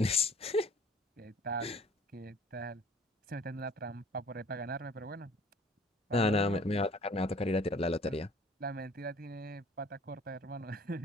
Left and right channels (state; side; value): normal; both; correlation 0.52